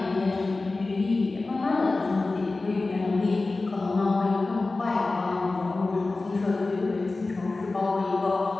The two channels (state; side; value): quieter; right; 3.4 dB